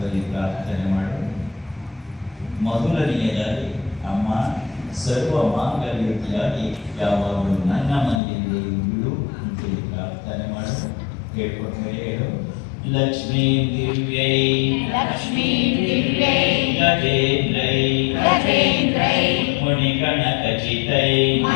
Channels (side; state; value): right; drops out; at 8.2 s